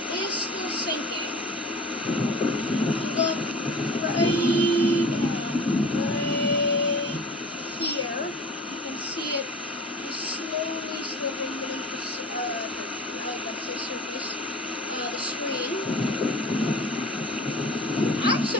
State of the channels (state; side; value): normal; both; correlation 0.40